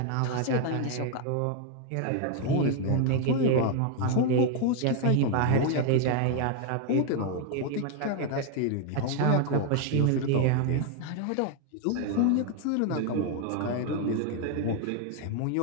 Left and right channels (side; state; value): both; different; correlation 0.01